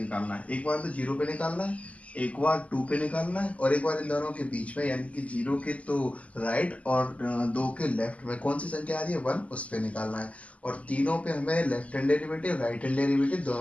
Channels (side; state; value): right; late; 0.067 ms